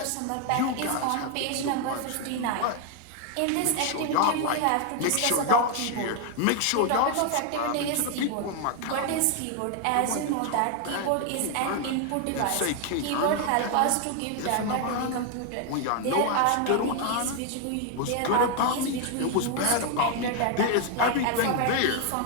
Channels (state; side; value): different; both; correlation 0.00